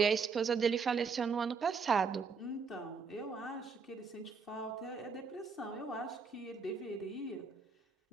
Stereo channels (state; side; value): quieter; left; 5.2 dB